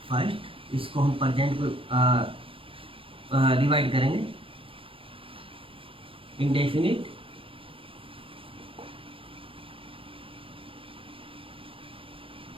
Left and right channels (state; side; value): late; left; 0.26 ms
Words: First इसको हम प्रेजेंट को डिवाइड करेंगे इंडेफिनिट,